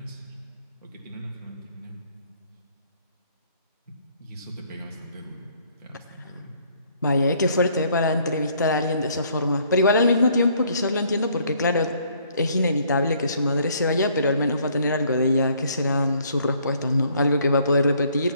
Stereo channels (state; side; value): inverted; both; correlation -0.64